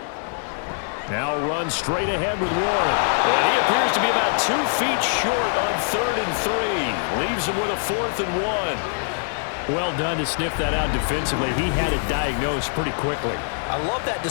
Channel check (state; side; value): silent; right; digital silence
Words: Now run straight ahead with Warren. And he appears to be about 2 feet short on 3rd and 3. Leaves him with a 4th and 1. Well done to sniff that out defensively. He had it diagnosed pretty quickly. I love that